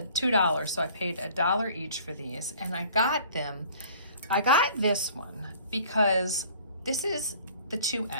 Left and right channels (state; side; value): inverted; both; correlation -0.51